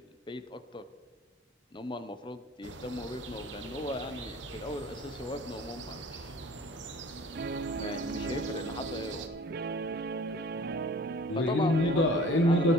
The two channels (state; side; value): normal; both; correlation 0.47